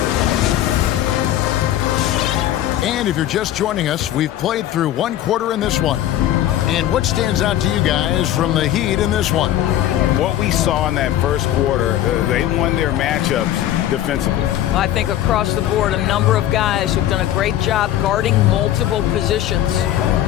And if you're just joining us, we've played through 1 quarter in this one. And what stands out to you guys from the Heat in this one? What we saw in that first quarter, they won their matchups defensively. I think across the board, a number of guys who've done a great job guarding multiple positions.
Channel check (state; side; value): quieter; right; 12.5 dB